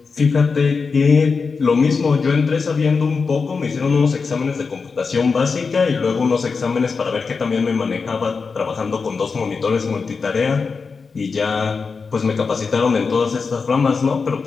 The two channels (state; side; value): quieter; right; 4.9 dB